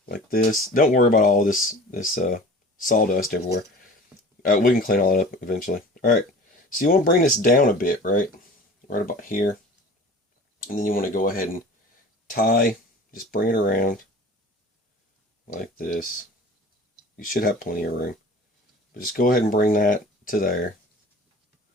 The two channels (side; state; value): both; normal; correlation 0.41